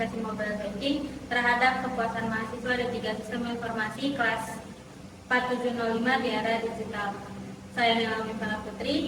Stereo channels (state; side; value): identical; both; correlation 1.00